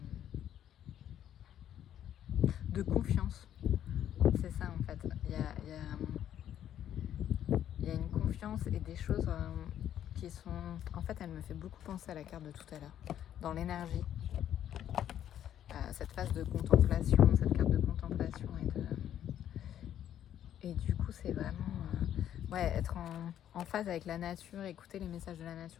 de confiance. C'est ça en fait. Il y a une confiance et des choses qui sont... En fait, elle me fait beaucoup penser à la carte de tout à l'heure, dans l'énergie. Cette phase de contemplation, cette carte de contemplation et du coup c'est vraiment être en phase avec la nature, écouter les messages de la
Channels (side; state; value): right; quieter; 10.6 dB